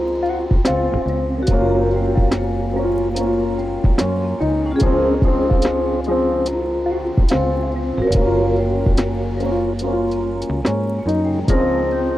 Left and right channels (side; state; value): both; normal; correlation 0.93